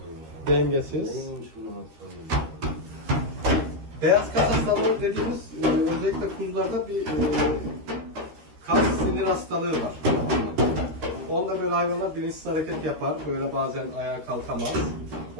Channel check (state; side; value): late; left; 13 ms